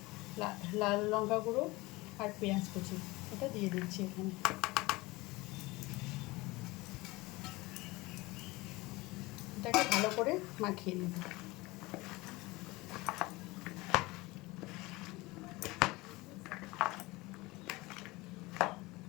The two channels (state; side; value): quieter; right; 21.9 dB